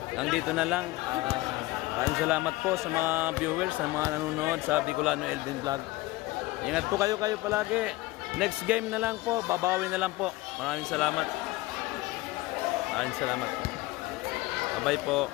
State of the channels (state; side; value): quieter; right; 19.5 dB